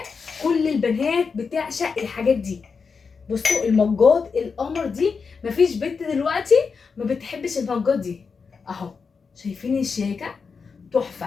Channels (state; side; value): quieter; right; 5.3 dB